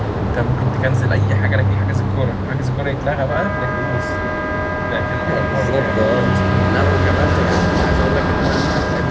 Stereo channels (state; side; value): identical; both; correlation 1.00